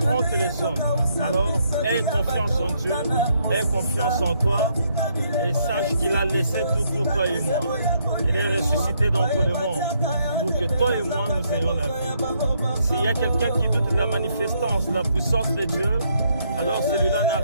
que les hommes. Alors, aie confiance en Dieu. Aie confiance en toi. Et sache qu'il a laissé tout pour toi et moi. Il est ressuscité d'entre le monde pour que toi et moi, nous ayons la vie. S'il y a quelqu'un qui doute de la manifestance, de la puissance de Dieu, alors celui-là n'a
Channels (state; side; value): inverted; both; correlation -0.73